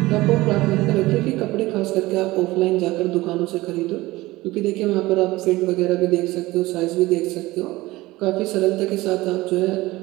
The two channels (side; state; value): left; quieter; 19.2 dB